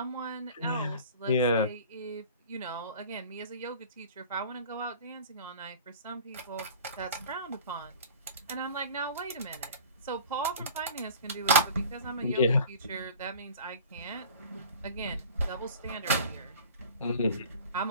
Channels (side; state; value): both; inverted; correlation -0.43